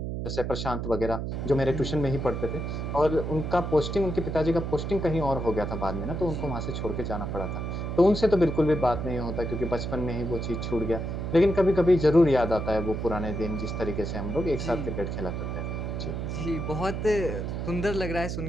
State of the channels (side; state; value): right; noise; hum, 3 dB below the sound